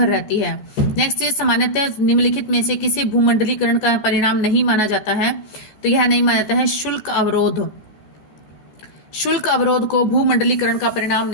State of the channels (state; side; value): late; right; 14 ms